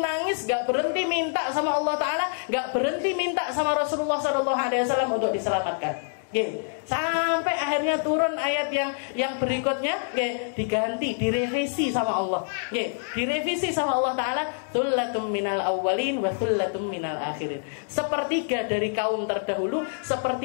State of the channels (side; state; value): right; silent; digital silence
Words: nggak berhenti minta sama Allah Ta'ala, nggak berhenti minta sama Rasulullah Shallallahu Alaihi Wasallam untuk diselamatkan. Sampai akhirnya turun ayat yang berikutnya, diganti, direvisi sama Allah, direvisi sama Allah Ta'ala, thullatum minal awwalin wa thullatum minal akhirin, sepertiga dari kaum terdahulu,